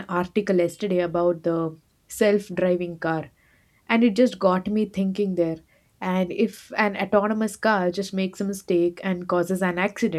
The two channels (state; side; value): identical; both; correlation 1.00